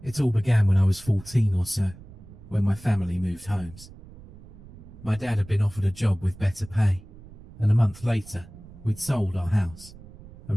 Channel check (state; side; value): noise; right; rumble, 19 dB below the sound